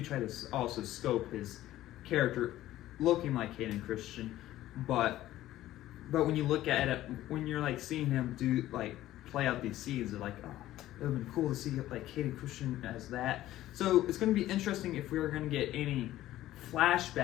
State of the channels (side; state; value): right; quieter; 14.5 dB